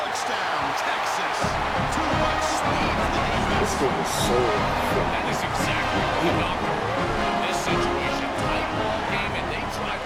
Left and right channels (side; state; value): both; identical; correlation 1.00